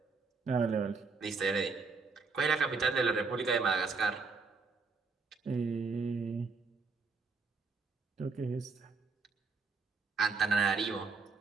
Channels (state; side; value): quieter; left; 4.4 dB